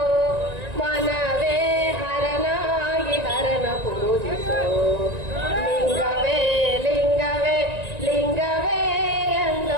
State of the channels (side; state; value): left; late; 1.9 ms